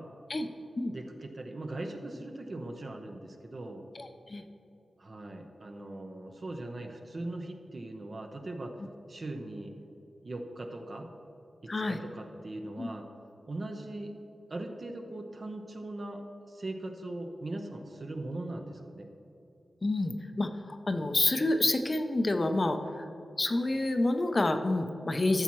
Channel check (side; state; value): both; normal; correlation 0.96